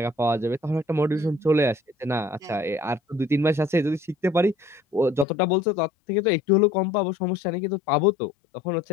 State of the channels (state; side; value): drops out; right; at 5.2 s